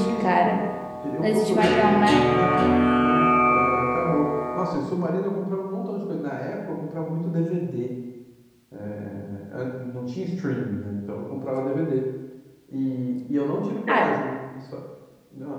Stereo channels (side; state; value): both; identical; correlation 1.00